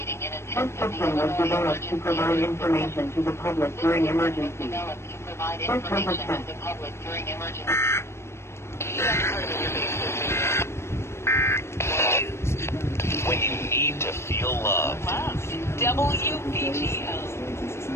This system was developed to provide information to the public during emergencies. This was a test. When you need to feel love. WIBI-FM.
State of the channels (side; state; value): right; late; 0.13 ms